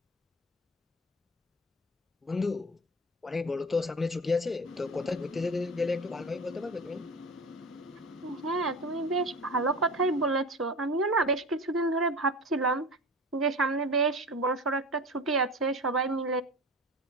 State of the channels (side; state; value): both; normal; correlation 0.32